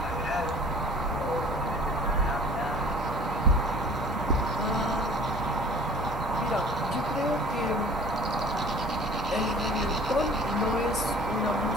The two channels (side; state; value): both; normal; correlation 0.46